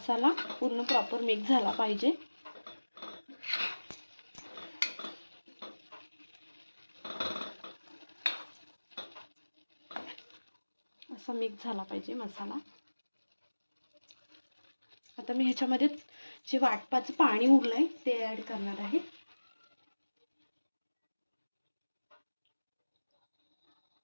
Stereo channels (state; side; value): inverted; both; correlation -1.00